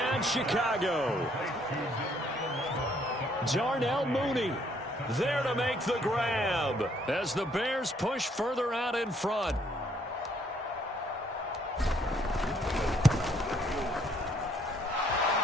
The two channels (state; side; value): normal; both; correlation 0.67